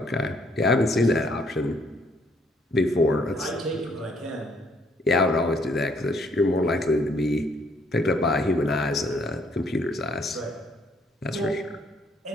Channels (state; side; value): normal; both; correlation 0.66